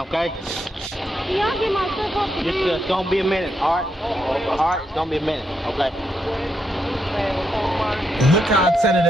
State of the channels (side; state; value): both; normal; correlation 0.81